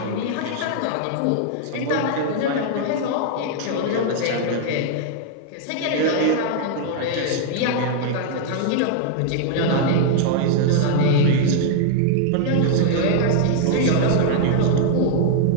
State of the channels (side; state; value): both; different; correlation 0.00